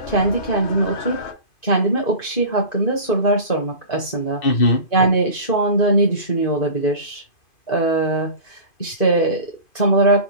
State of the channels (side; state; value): right; late; 2.5 ms